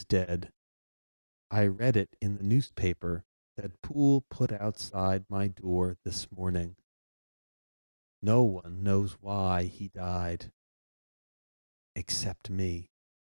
dead. I read it in the newspaper that Poole put outside my door this morning. No one knows why he died. Except me.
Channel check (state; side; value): inverted; both; correlation -1.00